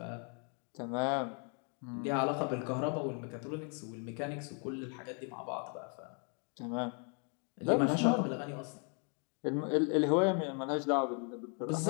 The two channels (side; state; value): right; quieter; 39.2 dB